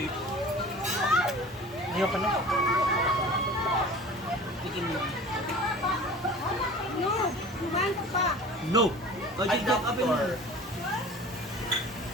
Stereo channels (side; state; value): both; normal; correlation 0.41